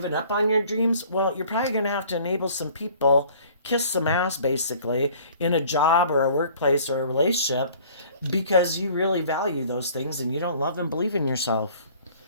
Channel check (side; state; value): both; inverted; correlation -0.52